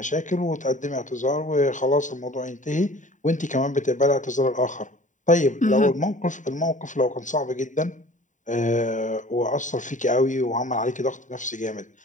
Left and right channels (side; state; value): right; late; 0.36 ms